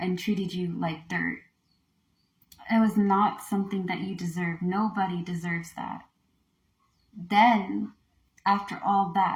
and treated you like dirt. It was not something that you deserve. Nobody deserves that. Then, after all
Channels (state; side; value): identical; both; correlation 1.00